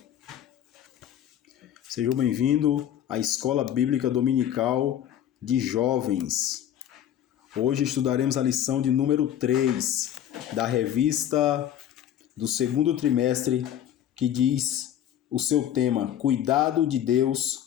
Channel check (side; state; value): right; quieter; 10.7 dB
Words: Sejam bem-vindos à Escola Bíblica Dominical de Jovens. Hoje estudaremos a lição de número 3 da revista do segundo trimestre, que diz o seu tema: Cuidado de